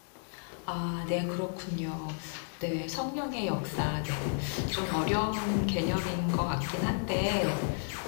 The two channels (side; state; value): right; silent; 56 dB below the other